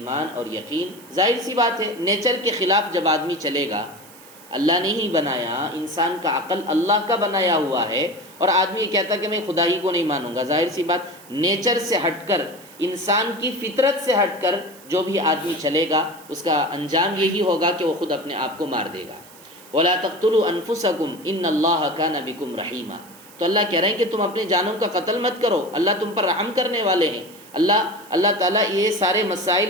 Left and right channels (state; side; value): noise; right; hiss, 22 dB below the sound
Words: اور یقین، ظاہر سی بات ہے نیچر کے خلاف جب آدمی چلے گا، اللہ نے ہی بنایا، انسان کا عقل اللہ کا بنایا ہوا ہے، اور آدمی یہ کہتا کہ میں خدا ہی کو نہیں مانوں گا، ظاہر سی بات نیچر سے ہٹ کر، انسان کی فطرت سے ہٹ کر جو بھی آدمی چلے گا اس کا انجام یہی ہوگا کہ وہ خود اپنے آپ کو مار دے گا۔ وَلَا تَقْتُلُوا أَنفُسَكُمْ إِنَّ اللَّهَ كَانَ بِكُمْ رَحِيمًا۔ تو اللہ کہہ رہے ہیں کہ تم اپنے جانوں کا قتل مت کرو، اللہ تم پر رحم کرنے والے ہیں۔ اللہ تعالیٰ یہ سارے مسائل